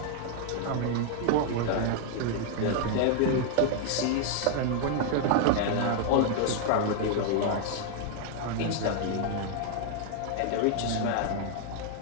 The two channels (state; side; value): different; both; correlation 0.00